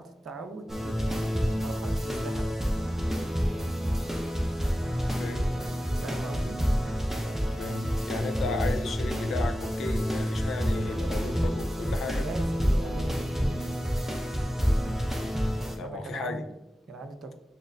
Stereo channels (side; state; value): both; normal; correlation 0.94